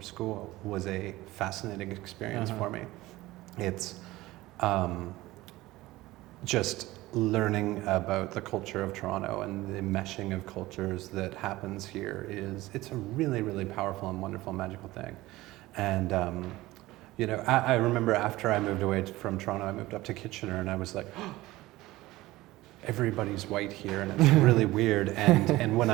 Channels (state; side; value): quieter; left; 18.2 dB